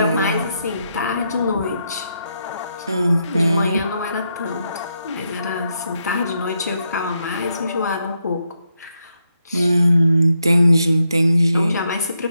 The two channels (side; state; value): both; inverted; correlation -0.81